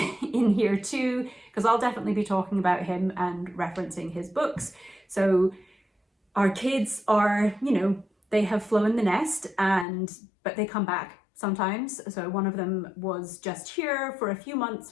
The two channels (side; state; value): right; drops out; at 9.9 s